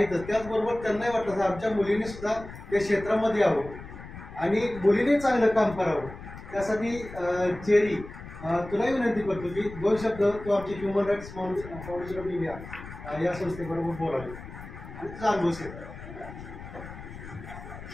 त्याचबरोबर त्यांनाही वाटलं तर आमच्या मुलीने सुद्धा त्या क्षेत्रामध्ये यावं आणि मुलीने चांगलं काम करावं. त्यासाठी चेरी तुलाही विनंती करतो की 2 शब्द तू आमची human rights foundation of India या संस्थेबरोबर बोलावे आणि तुझा अनुभव शेअर करा.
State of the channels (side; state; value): left; noise; rumble, 13 dB below the sound